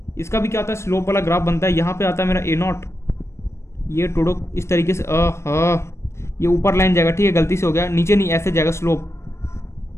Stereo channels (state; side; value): late; right; 0.13 ms